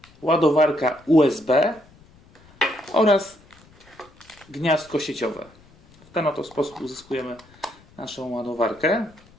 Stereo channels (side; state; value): left; noise; rumble, 27 dB below the sound